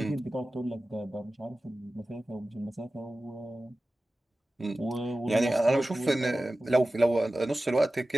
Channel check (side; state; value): both; normal; correlation 0.96